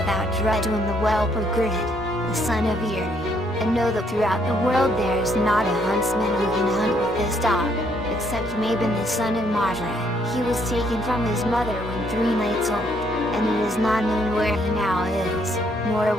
without dread when the well-pergirded, the son of Eri. And know that throughout the world there is not a huntsman who can hunt with this dog, except Mabon the son of Madra. He was taken from his mother when 3 nights old, and it is not known where he now is, nor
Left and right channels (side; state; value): both; normal; correlation 0.69